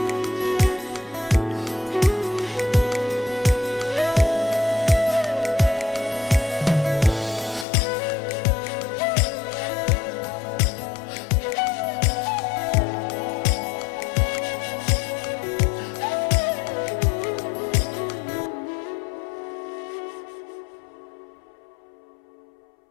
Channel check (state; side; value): drops out; right; at 7.7 s